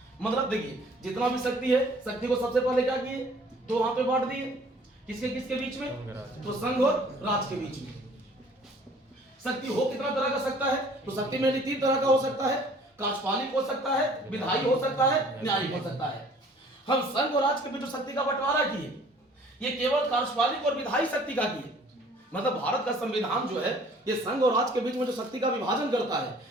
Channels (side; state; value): both; normal; correlation 0.54